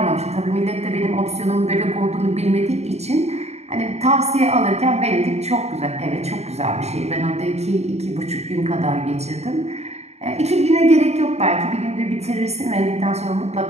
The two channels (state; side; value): late; left; 0.31 ms